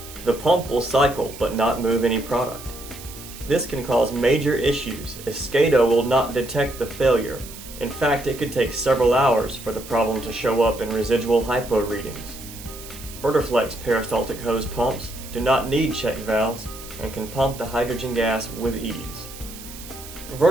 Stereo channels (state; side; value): noise; right; hiss, 15 dB below the sound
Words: The pump will cycle but not move any product. This can cause major issues as SCADA will not detect the failure. In fact, it could take several hours for the problem to show up in residual hypo readings. VerderFlex peristaltic hose pumps do not need check valves and can pump the hydrogen gas with ease.